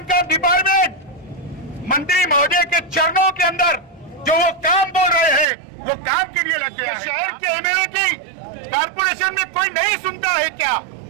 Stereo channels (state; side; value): drops out; left; at 5.5 s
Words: का डिपार्टमेंट मंत्री महोदय के चरणों के अंदर जो वो काम बोल रहे हैं वो काम के लिए लग गया। शहर के एमएलए की कारपोरेशन में कोई नहीं सुनता है क्या?